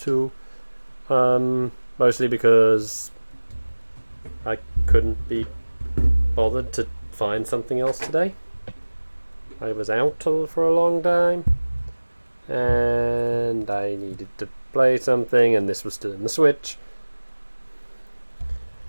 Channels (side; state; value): both; inverted; correlation -1.00